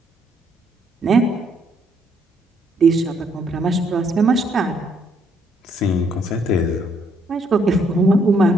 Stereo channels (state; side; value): normal; both; correlation 0.70